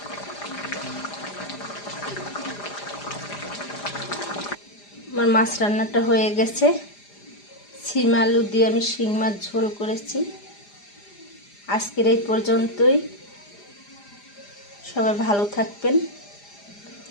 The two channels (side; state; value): right; late; 4.9 ms